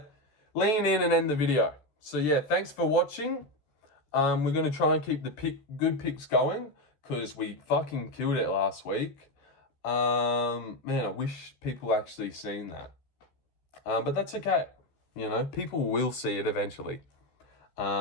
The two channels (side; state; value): right; late; 14 ms